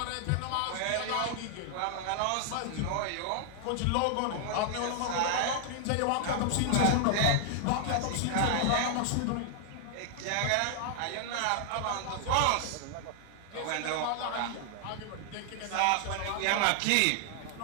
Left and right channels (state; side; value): different; both; correlation 0.00